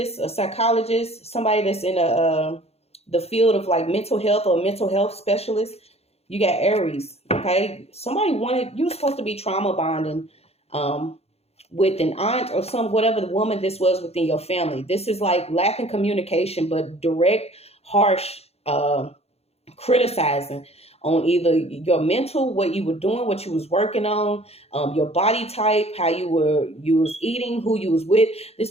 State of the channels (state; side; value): late; right; 0.30 ms